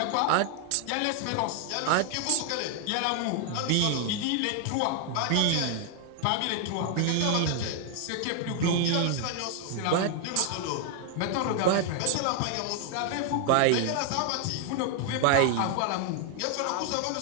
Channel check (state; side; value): different; both; correlation 0.00